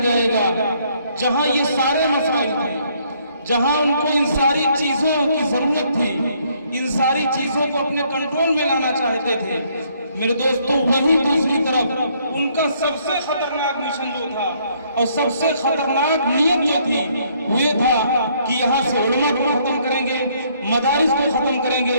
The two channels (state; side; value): inverted; both; correlation -0.67